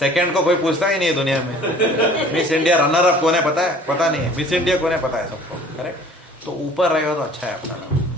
को कोई पूछता ही नहीं है दुनिया में. मिस इंडिया रनर अप कौन है पता है? पता नहीं है. मिस इंडिया कौन है पता है सबको. करेक्ट. तो ऊपर रहेगा तो अच्छा है अपना नाम.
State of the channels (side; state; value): both; normal; correlation 0.50